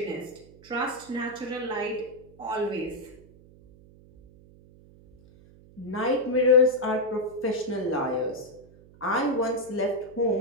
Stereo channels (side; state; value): right; noise; hum, 24 dB below the sound